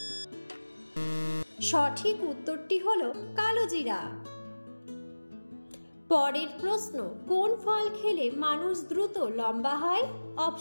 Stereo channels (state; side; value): inverted; both; correlation -1.00